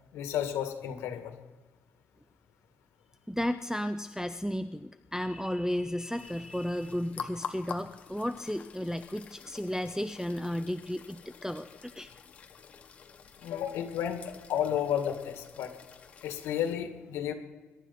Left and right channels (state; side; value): quieter; right; 3.4 dB